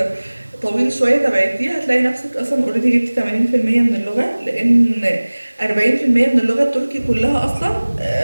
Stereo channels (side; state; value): both; inverted; correlation -1.00